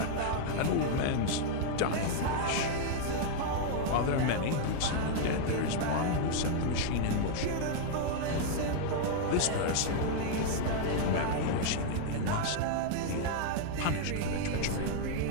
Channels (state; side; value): different; both; correlation -0.01